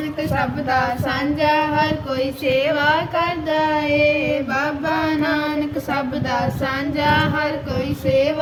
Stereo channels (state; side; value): identical; both; correlation 1.00